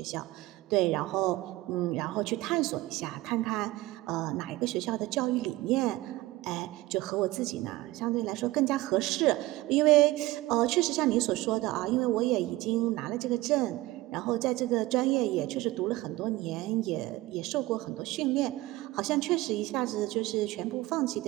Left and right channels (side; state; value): left; quieter; 18.3 dB